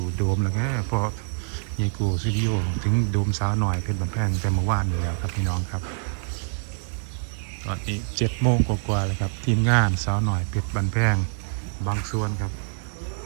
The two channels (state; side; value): silent; left; digital silence